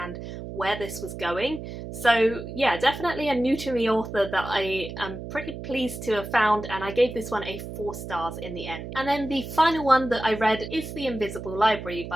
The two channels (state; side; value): noise; right; hum, 9 dB below the sound